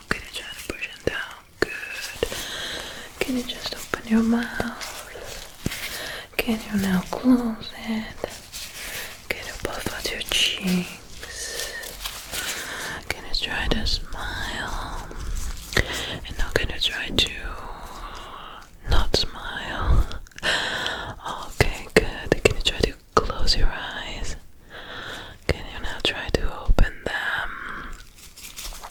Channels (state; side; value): identical; both; correlation 1.00